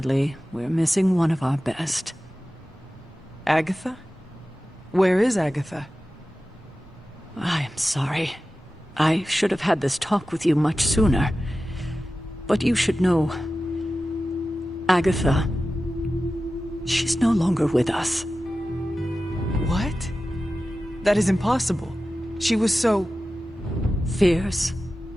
we're missing one of our best. Agatha? Where is Agatha? I am sorry. I should have had this talk with you much sooner. But you should know... Agatha... She's no longer with us. What? That is impossible. She was so... Fierce,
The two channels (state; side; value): normal; both; correlation 0.94